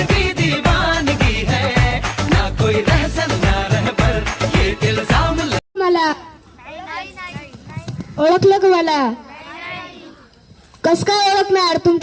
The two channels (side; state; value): both; identical; correlation 1.00